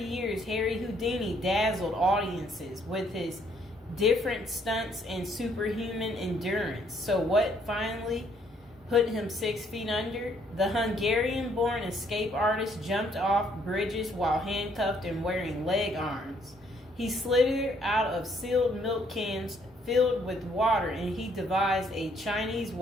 Harry Houdini dazzled audiences with his different stunts and superhuman endurance. So what finally put him 6 feet under? The Hungarian-born escape artist jumped off bridges while handcuffed and wearing leg irons. He slithered out of sealed milk cans filled with water, and he devised a Chinese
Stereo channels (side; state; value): both; normal; correlation 0.67